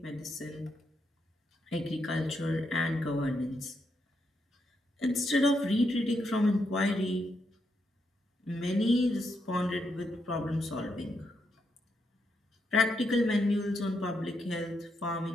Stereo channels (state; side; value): normal; both; correlation 0.80